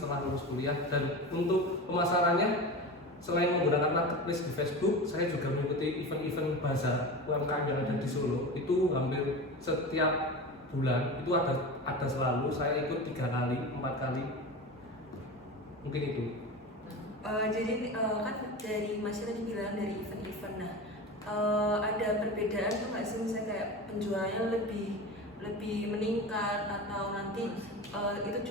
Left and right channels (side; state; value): both; normal; correlation 0.28